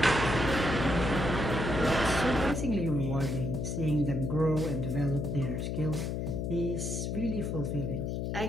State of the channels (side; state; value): left; noise; hum, 2 dB below the sound